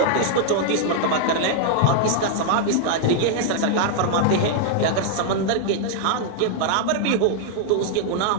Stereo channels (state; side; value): different; both; correlation -0.01